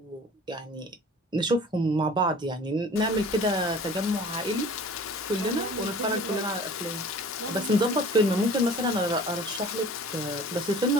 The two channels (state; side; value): normal; both; correlation 0.45